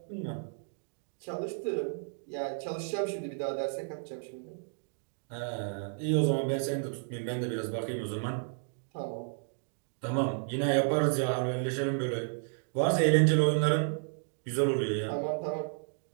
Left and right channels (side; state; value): left; silent; digital silence